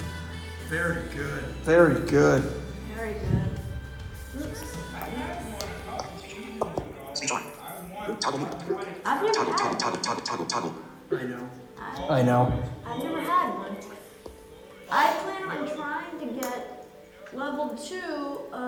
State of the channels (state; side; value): identical; both; correlation 1.00